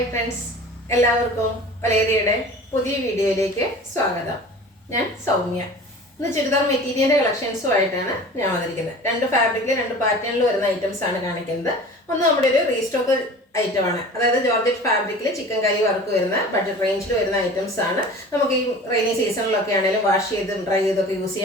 friends, എല്ലാവർക്കും വലേറിയയുടെ പുതിയ വീഡിയോയിലേക്ക് സ്വാഗതം. ഞാൻ സൗമ്യ. ഇന്ന് ചുരിദാർ മെറ്റീരിയലിൻ്റെ കളക്ഷൻസുമായിട്ടാണ് ഞാൻ വന്നിരിക്കുന്നത്. രണ്ട് ഫാബ്രിക്കിൽ രണ്ട് പാറ്റേണിൽ വരുന്ന ഐറ്റംസ് ആണ് കാണിക്കുന്നത്. ഒന്ന് നമ്മുടെ ഒരു റീസ്റ്റോക്ക് ഐറ്റമാണ്, അതായത് ജോർജറ്റ് ഫാബ്രിക്കിൽ ചിക്കൻ കറി വർക്ക് വരുന്ന ബഡ്ജറ്റ് റേഞ്ചിൽ വരുന്ന ഐറ്റംസ് ആണ്. നമുക്ക് ഈ റെയിനി സീസണിലൊക്കെ ആണെങ്കിലും വാഷ് ചെയ്തും ഡ്രൈ ചെയ്തൊക്കെ യൂസ്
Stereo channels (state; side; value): normal; both; correlation 0.40